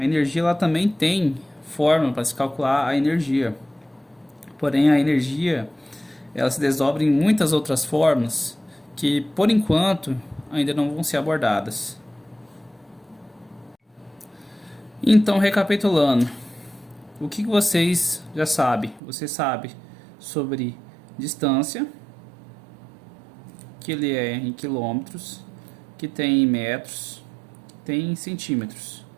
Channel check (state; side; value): drops out; left; at 19.0 s